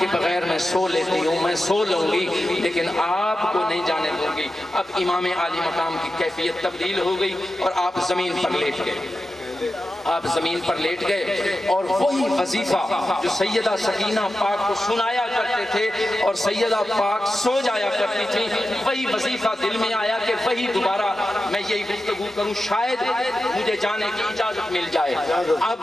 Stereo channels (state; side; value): normal; both; correlation 0.92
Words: بغیر میں سو لیتی ہوں، میں سو لوں گی لیکن آپ کو نہیں جانے دوں گی۔ اب امام عالی مقام کی کیفیت تبدیل ہو گئی اور آپ زمین پر لیٹ گئے، آپ زمین پر لیٹ گئے، اور وہی وظیفہ جو سیدہ سکینہ پاک کو سنایا کرتے تھے اور سیدہ پاک سو جایا کرتی تھی، وہی وظیفہ دل میں آیا کہ وہی دوبارہ میں یہی گفتگو کروں، شاید مجھے جانے کی اجازت مل جائے۔